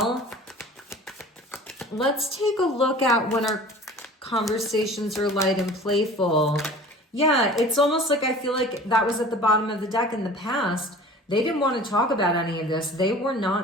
Let's take a look at when our conversations are light and playful. Yeah, it's almost like I feel like that was at the bottom of the deck in the past. They didn't want to talk about any of this. They were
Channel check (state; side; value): normal; both; correlation 0.43